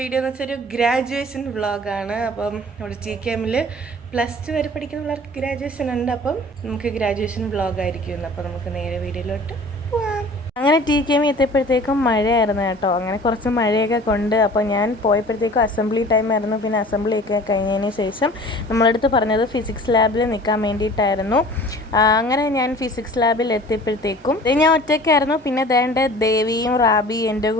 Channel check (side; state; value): both; normal; correlation 0.45